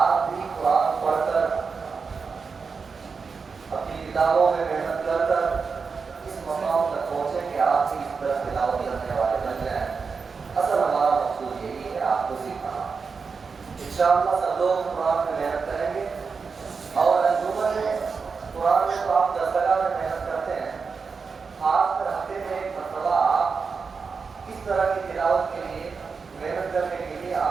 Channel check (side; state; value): left; quieter; 5.1 dB